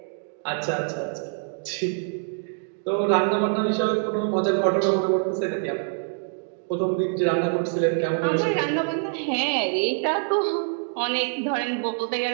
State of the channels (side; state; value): left; silent; digital silence